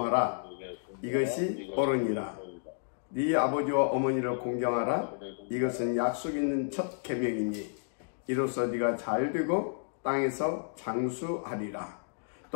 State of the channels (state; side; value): silent; right; digital silence